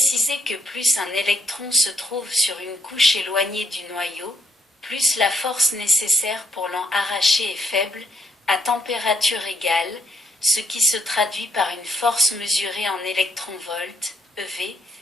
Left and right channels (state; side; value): normal; both; correlation 0.71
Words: que plus un électron se trouve sur une couche éloignée du noyau, plus la force nécessaire pour l'en arracher est faible, à température égale, ce qui se traduit par une force mesurée en électronvolts, EV,